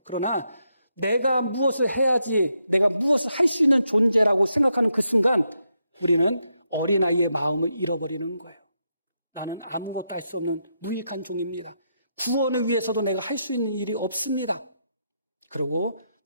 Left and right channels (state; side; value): inverted; both; correlation -0.82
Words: 그러나 내가 무엇을 해야지, 내가 무엇을 할 수 있는 존재라고 생각하는 그 순간 우리는 어린아이의 마음을 잃어버리는 거예요. 나는 아무것도 할 수 없는 무익한 종입니다. 구원을 위해서도 내가 할 수 있는 일이 없습니다. 그리고